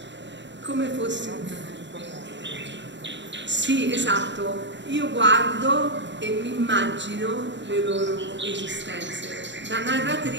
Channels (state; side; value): late; left; 0.53 ms